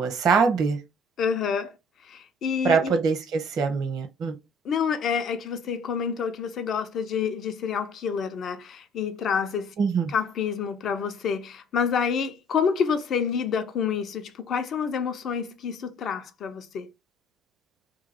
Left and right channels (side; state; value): both; normal; correlation 0.55